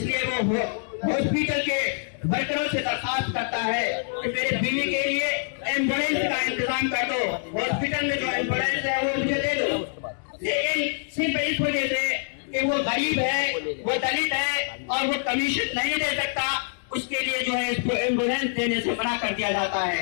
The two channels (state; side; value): silent; right; digital silence